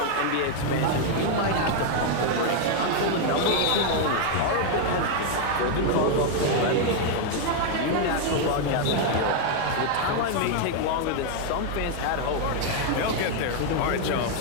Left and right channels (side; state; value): both; different; correlation 0.00